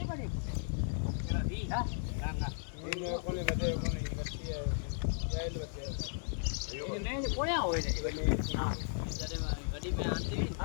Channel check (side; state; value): right; silent; 54 dB below the other